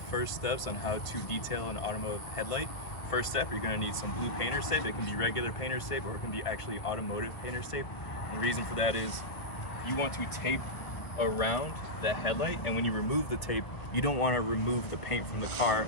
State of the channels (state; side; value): late; right; 1.7 ms